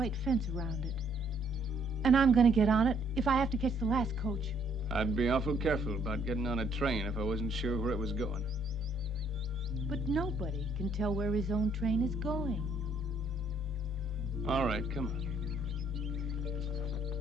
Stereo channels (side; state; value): both; normal; correlation 0.67